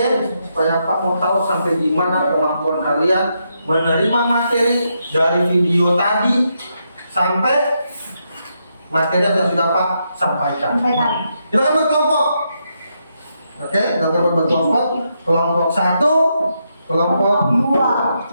supaya Pak mau tahu sampai di mana kemampuan kalian menerima materi dari video tadi sampai materi yang sudah Pak sampaikan. Kita akan berkelompok. Oke, kita akan berkelompok. Kelompok 1, kelompok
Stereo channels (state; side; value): inverted; both; correlation -0.81